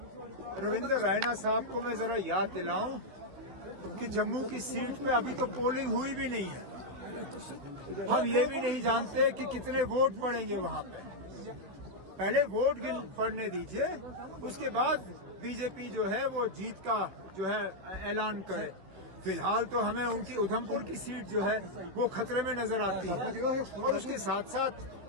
रविंद्र रायना साहब को मैं जरा याद दिलाऊं कि जम्मू की सीट पे अभी तो पोलिंग हुई भी नहीं है। हम ये भी नहीं जानते कि कितने वोट पड़ेंगे वहां पे। पहले वोट पड़ने दीजिए, उसके बाद बीजेपी जो है वो जीत का जो है ऐलान करे। फिलहाल तो हमें उनकी उधमपुर की सीट जो है वो खतरे में नजर आती है। और उसके साथ साथ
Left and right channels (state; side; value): late; left; 16 ms